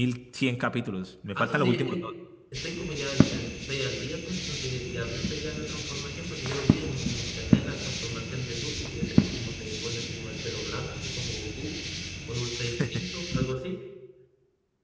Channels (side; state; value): both; identical; correlation 1.00